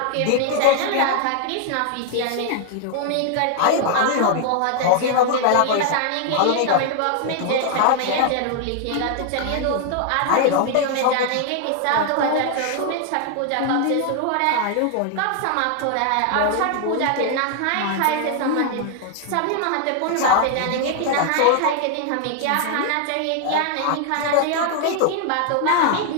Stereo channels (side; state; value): both; different; correlation 0.00